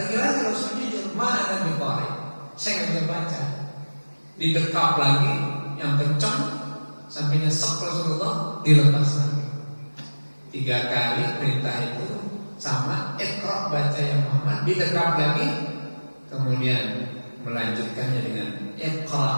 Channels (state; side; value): inverted; both; correlation -1.00